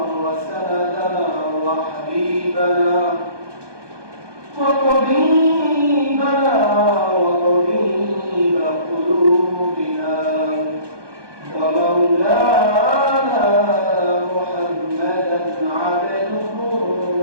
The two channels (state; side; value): late; left; 1.2 ms